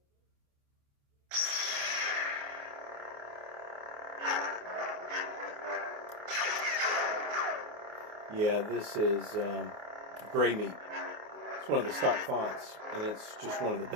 Yeah, this is Gray Meat. It's one of the stock fonts, and it's just one of the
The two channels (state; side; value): late; left; 28 ms